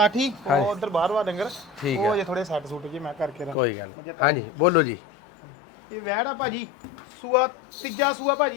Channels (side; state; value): right; drops out; at 3.6 s